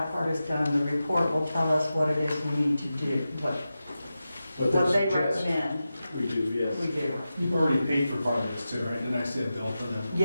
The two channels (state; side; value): inverted; both; correlation -0.92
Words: part is done. The report will tell us what it is we need to do, what What they suggest recommend we do, yes. we do. You've already paid for part of this too, right? Didn't I see a bill for them?